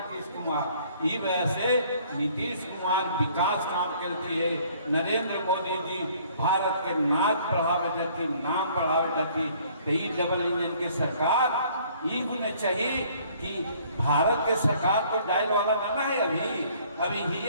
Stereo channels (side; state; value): both; inverted; correlation -0.58